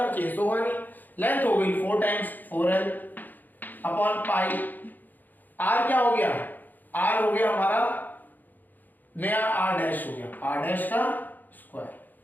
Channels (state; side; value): late; right; 0.085 ms